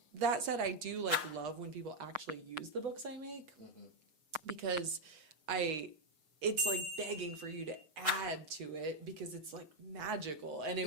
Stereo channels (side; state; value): left; late; 6.5 ms